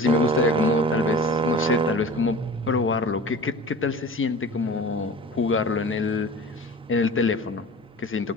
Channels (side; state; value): both; normal; correlation 0.38